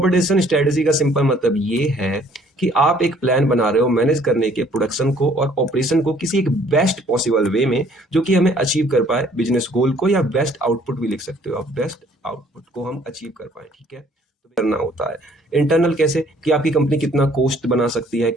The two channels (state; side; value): normal; both; correlation 0.60